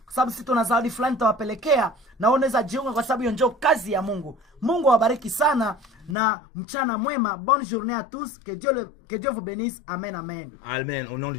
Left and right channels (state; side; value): drops out; right; at 6.2 s